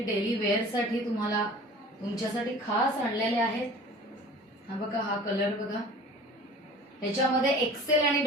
डेली वेअर साठी तुम्हाला तुमच्यासाठी खास आणलेले आहेत. हा बघा, हा कलर बघा. ह्याच्यामध्ये एक्सेल आणि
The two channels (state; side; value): normal; both; correlation 0.42